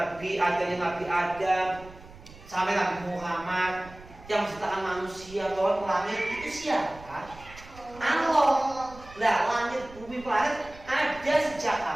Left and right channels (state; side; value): noise; right; rumble, 19 dB below the sound